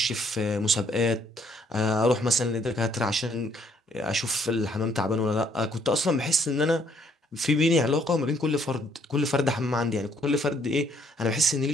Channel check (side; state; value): both; normal; correlation 0.66